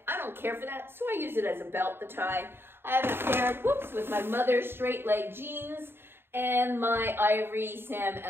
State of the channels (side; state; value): left; late; 0.11 ms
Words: I don't care for that, so I use it as a belt, the tie. I have a pair, whoops, with my mother's straight leg jeans, and my ivory Sam